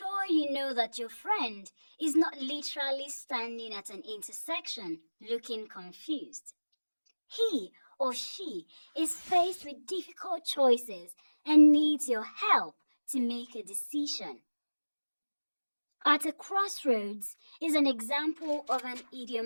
you know that your friend is not literally standing at an intersection looking confused. He or she is faced with difficult choices and needs your help to make a decision. At a crossroads is an example of an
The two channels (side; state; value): both; inverted; correlation -1.00